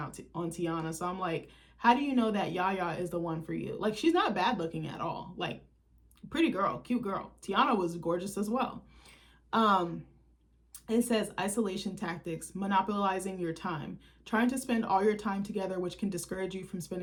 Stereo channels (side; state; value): both; identical; correlation 1.00